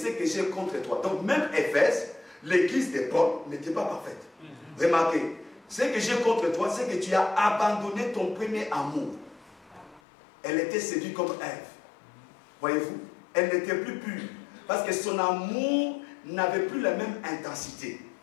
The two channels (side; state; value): right; drops out; at 10.0 s